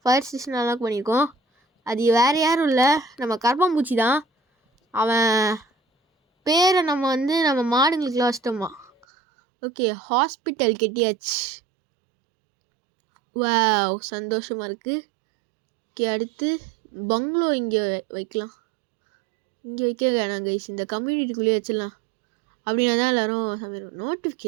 ஃபயர் ஸ்டேஷனும் அன்லாக் பண்ணியிருக்கோம். அது வேறு யாரும் இல்லை, நம்ம கரப்பாம்பூச்சி தான். அவன் பேரை நம்ம மாடுங்களுக்குலாம் வச்சிட்டோமா. ஓகே, ஹாஸ்பிட்டல் கட்டியாச்சு. வாவ், சந்தோஷமாக இருக்குது. ஓகே, அடுத்து பங்களோ இங்கே வைக்கலாம். இங்கே வைக்க வேணாம் கைஸ், இந்த கம்யூனிட்டிக்குள்ளேயே வச்சிடலாம். அப்படின்னா தான் எல்லோரும் சமையல்.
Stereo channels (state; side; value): drops out; left; at 9.1 s